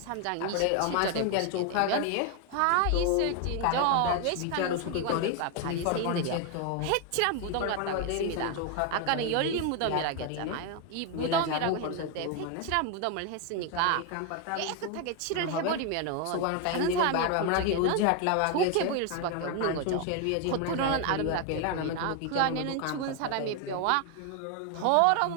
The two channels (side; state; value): both; different; correlation 0.01